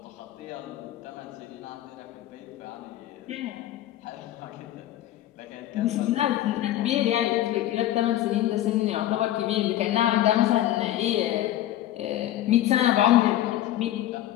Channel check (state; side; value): quieter; right; 13.4 dB